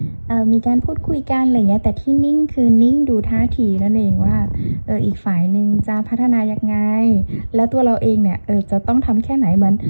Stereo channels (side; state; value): both; inverted; correlation -1.00